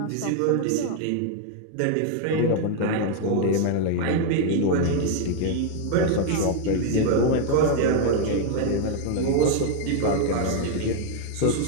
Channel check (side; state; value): both; different; correlation 0.00